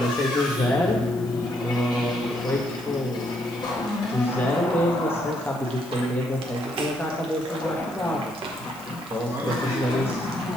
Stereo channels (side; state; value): left; noise; hiss, 22 dB below the sound